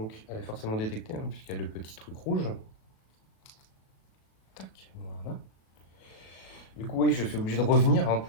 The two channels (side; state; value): right; late; 36 ms